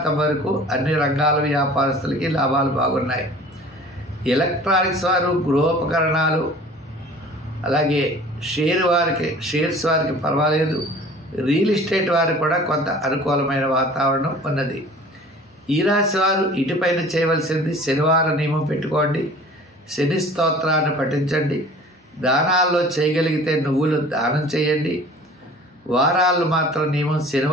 వరకు అన్ని రంగాల వ్యాపారస్తులకి లాభాలు బాగున్నాయి. ఎలక్ట్రానిక్స్ వారు, గృహోపకరణాలు, అలాగే షేర్స్ వారికి పర్వాలేదు. రియల్ ఎస్టేట్ వారికి కూడా కొంత అనుకూలమైన వాతావరణం ఉన్నది. ఈ రాశి వారు ఇటుపైన చేయవలసింది శనివారం నియమం పెట్టుకోండి. శని స్తోత్రాన్ని పఠించండి. దానాల్లో చేయగలిగితే నువ్వులు దానం చేయండి. వారాలు మాత్రం నియమం,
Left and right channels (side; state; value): both; normal; correlation 0.46